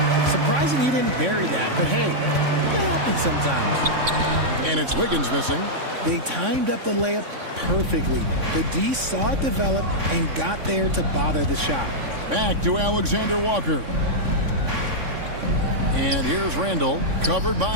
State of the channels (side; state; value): left; late; 3.6 ms